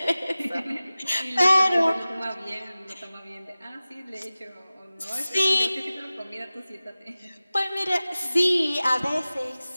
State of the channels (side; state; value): both; inverted; correlation -0.97